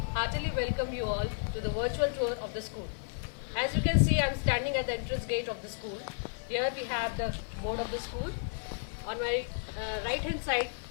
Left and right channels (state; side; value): silent; right; digital silence